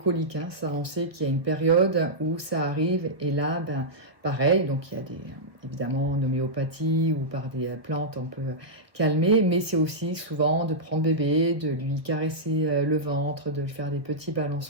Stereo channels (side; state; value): left; late; 1.1 ms